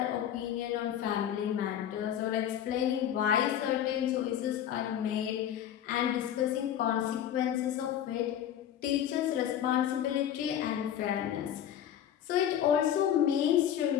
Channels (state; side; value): quieter; right; 10.3 dB